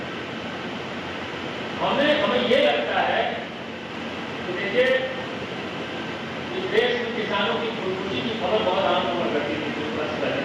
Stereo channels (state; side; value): identical; both; correlation 1.00